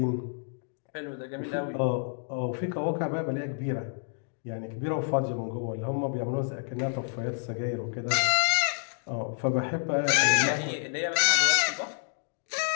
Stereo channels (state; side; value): silent; right; digital silence